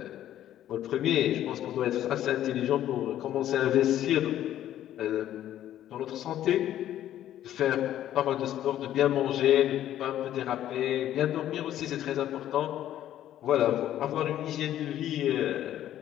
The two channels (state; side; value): quieter; right; 12.1 dB